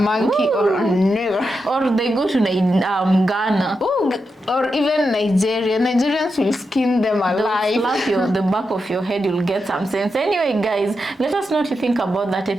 Ooh. Or a nigger. Or they go to Ghana. Ooh. Or even Nigeria. Nigerians will skin them alive. Slap the back of your head, you'll get some sense. Anyway, guys, let us know what you think about that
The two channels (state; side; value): normal; both; correlation 0.87